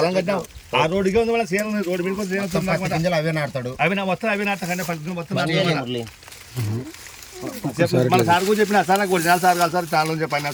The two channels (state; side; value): identical; both; correlation 1.00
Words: కట్టాం. ఆ రోడ్డుగా ఉంది. వాళ్ళ సేన రోడ్డు మీద అవే నాడతాడు. అవి నా వస్తాను. అవి నాటకండి. మొత్తం మన సార్ కూడా చెప్పిన సార్ నాకు 4 సార్ కాదు సార్ చాలా చెప్పిన